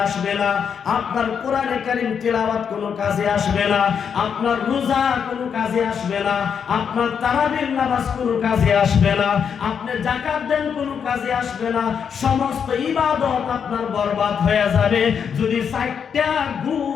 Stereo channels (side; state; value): right; quieter; 7.2 dB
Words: আসবে না, আপনার কোরআনে কারীম তিলাওয়াত কোনো কাজে আসবে না, আপনার রোজা কোনো কাজে আসবে না, আপনার তারাবির নামাজ কোনো কাজে আসবে না, আপনি যাকাত দেন কোনো কাজে আসবে না। সমস্ত ইবাদত আপনার বরবাদ হয়ে যাবে যদি 4টা